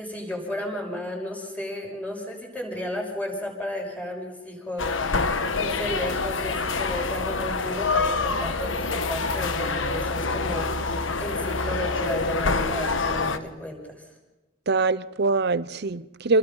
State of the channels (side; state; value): both; normal; correlation -0.01